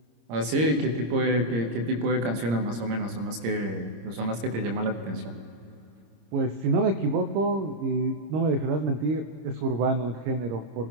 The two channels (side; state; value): left; late; 26 ms